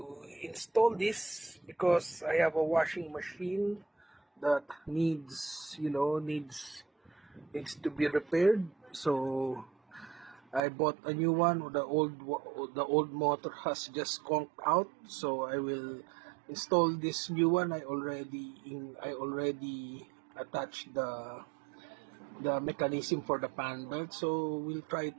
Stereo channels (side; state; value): left; drops out; at 10.6 s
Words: install this because I have a washing machine that needs to be repaired. So I bought a new one. The old motor has just conked out. So I will install this new one. I already attached the mechanism for the fan belt. So we'll try